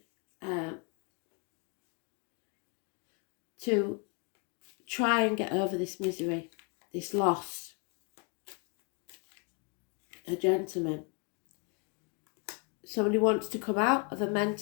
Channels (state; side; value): quieter; right; 34.1 dB